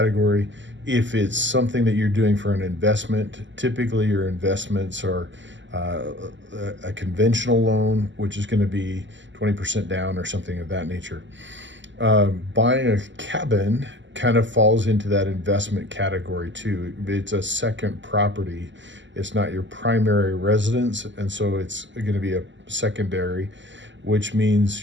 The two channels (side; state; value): left; late; 0.54 ms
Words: If it's something that you're doing for an investment, typically your investments are a conventional loan, which is going to be 20% down or something of that nature. Buying a cabin kind of falls into that investment category too. It's a second property. It's not your primary residence, and so it's going to be a secondary, which